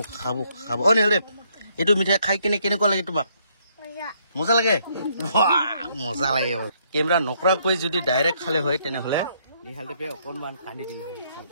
নিহাল দেৱ এইটো মিঠাই খাই কেনেকুৱা লাগে তোমাক মজা লাগে মজা লাগে কেমেৰা নকৰাকৈ যদি ডাইৰেক্ট খালে হয় তেনেহ'লে নিহাল দেৱে অকণমান কান্দি দিলে হয়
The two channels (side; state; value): both; inverted; correlation -0.70